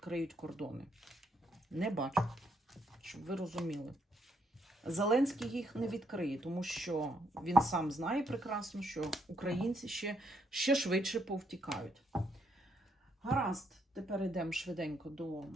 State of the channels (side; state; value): both; normal; correlation 0.73